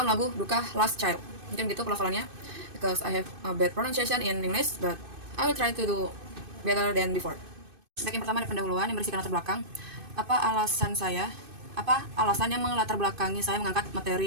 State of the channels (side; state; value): left; late; 2.5 ms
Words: lagu Duka Last Child. Mungkin gitu pelafalannya, because I have a bad pronunciation in English, but I will try to do better than before. Baik, yang pertama ada pendahuluan yang berisikan latar belakang. Apa alasan yang melatar belakangi saya mengangkat